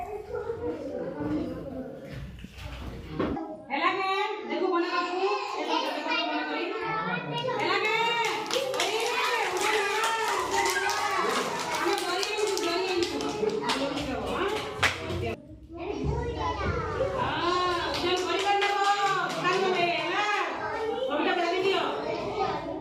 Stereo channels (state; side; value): identical; both; correlation 1.00